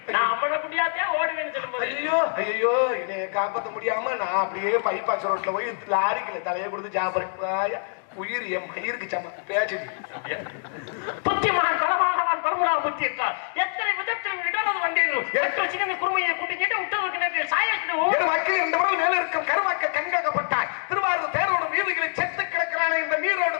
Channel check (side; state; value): right; silent; digital silence